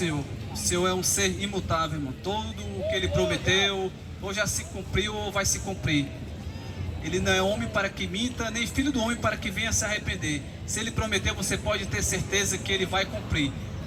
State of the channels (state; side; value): identical; both; correlation 1.00